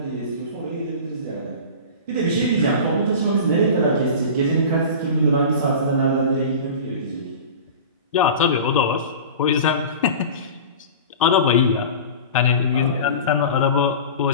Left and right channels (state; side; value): inverted; both; correlation -0.34